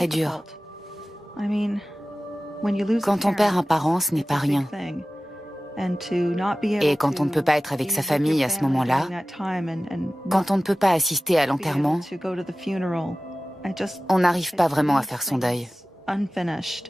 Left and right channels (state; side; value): normal; both; correlation 0.96